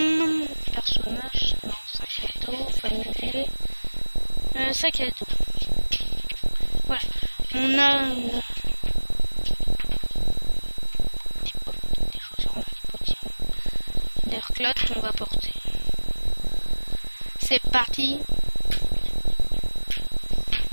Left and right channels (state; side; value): inverted; both; correlation -1.00